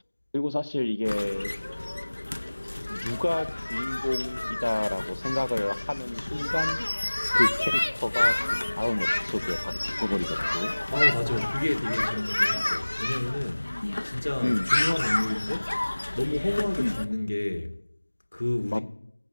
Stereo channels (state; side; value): inverted; both; correlation -1.00